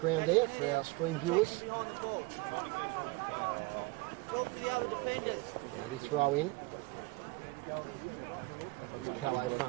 there for our stream viewers. Boundary throw in. Here's Callow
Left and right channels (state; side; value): quieter; left; 22.7 dB